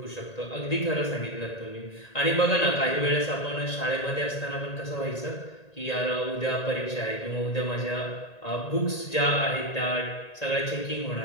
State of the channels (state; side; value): late; right; 1.8 ms